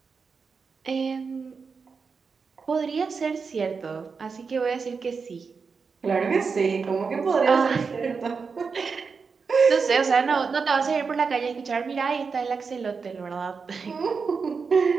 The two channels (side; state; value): left; quieter; 5.2 dB